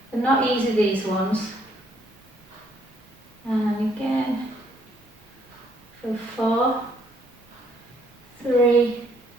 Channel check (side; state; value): both; normal; correlation 0.67